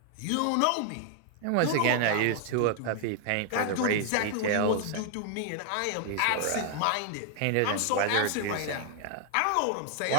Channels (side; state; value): both; different; correlation -0.01